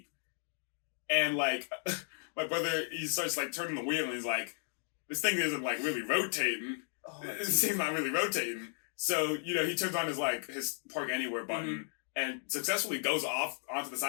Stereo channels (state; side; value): silent; right; digital silence